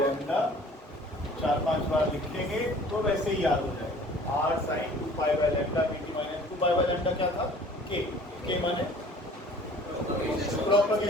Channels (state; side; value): normal; both; correlation 0.50